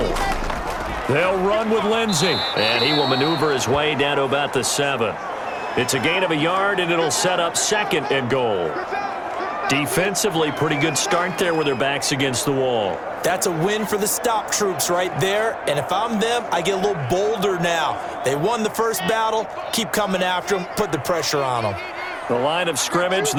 They'll run with Lindsey, and he will maneuver his way down to about the 7. It's a gain of a yard, and it'll set up 2nd and goal. Defensively, pretty good start there with their backs against the wall. That's a win for the stop troops right there, and if I'm them, I get a little bolder now. They won the first battle, keep coming after them, put the pressure on them. The line of scrimmage,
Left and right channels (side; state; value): both; identical; correlation 1.00